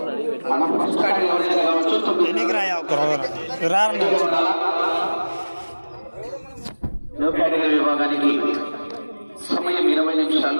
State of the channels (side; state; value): both; inverted; correlation -1.00